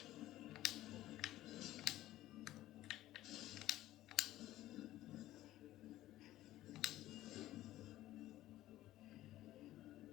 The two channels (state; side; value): quieter; right; 14.9 dB